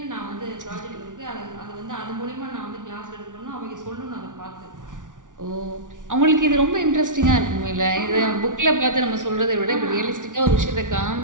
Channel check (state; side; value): late; left; 0.87 ms